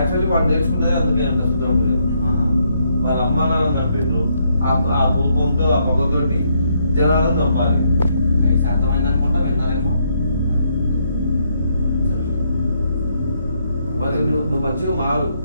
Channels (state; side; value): inverted; both; correlation -0.74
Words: వాడు నేర్చుకునేది అందుకే అంట శుద్ర పూజ. వాళ్ళ అమ్మ నాన్న చంపిండ్రు. ఆ కోపంతో ఆ పగతోటి జనాలను చంపాలి. అర్థమైంది అనుకుంటా విన్నారేమో. మరి నువ్వు మంచిగా మారు.